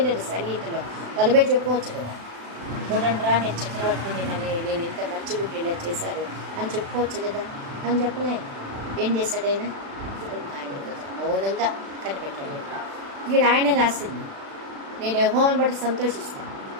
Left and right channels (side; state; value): left; late; 36 ms